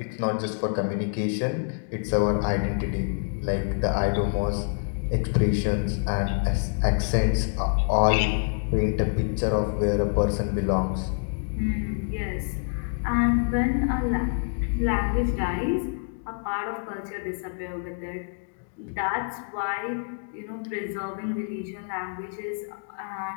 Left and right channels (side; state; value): right; silent; 60 dB below the other